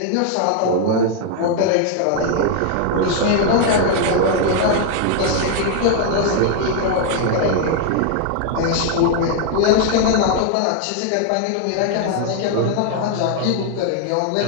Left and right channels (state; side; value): different; both; correlation 0.00